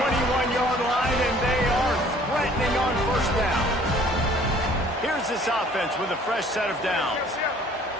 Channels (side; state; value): both; normal; correlation 0.55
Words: line, and they are threatening on first down. Here's this offense with a fresh set of downs.